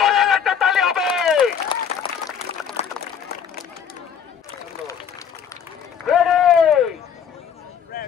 একটা তালি হবে।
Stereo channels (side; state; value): right; quieter; 7.7 dB